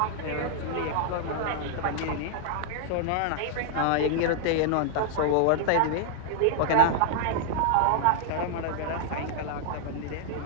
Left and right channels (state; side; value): different; both; correlation 0.00